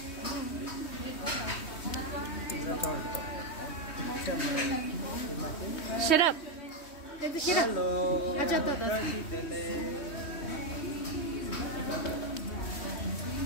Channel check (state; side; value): late; right; 3.2 ms